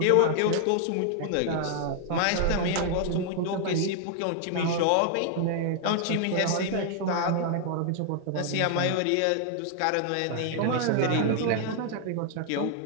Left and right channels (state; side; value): different; both; correlation 0.00